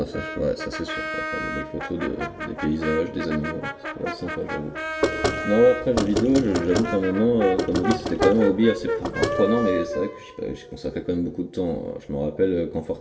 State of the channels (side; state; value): both; identical; correlation 1.00